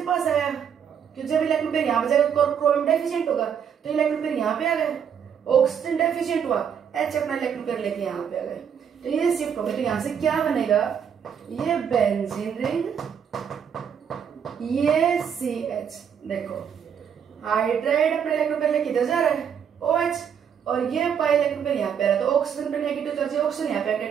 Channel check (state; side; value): quieter; left; 7.9 dB